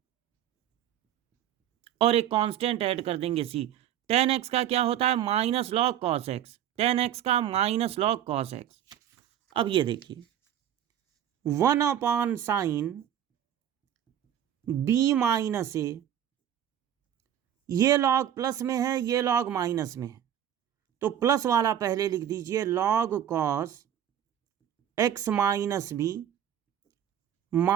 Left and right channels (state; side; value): quieter; left; 10.4 dB